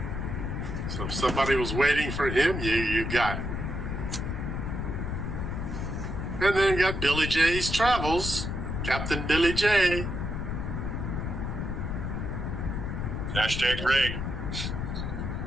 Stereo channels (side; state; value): left; noise; rumble, 3 dB below the sound